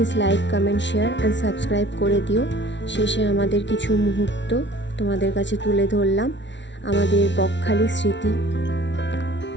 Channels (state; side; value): late; right; 0.52 ms